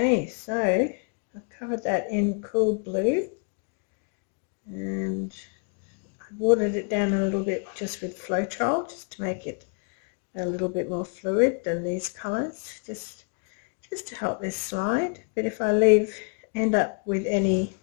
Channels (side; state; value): right; quieter; 39.6 dB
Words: Okay, so I've covered that in cool blue, and I watered it down a little bit just with Floetrol, just to make it a little bit more fluid than these colours, just to help this slide. But if I end up with any